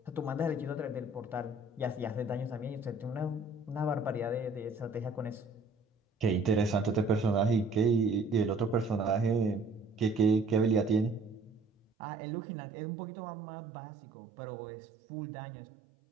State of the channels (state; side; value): drops out; left; at 11.9 s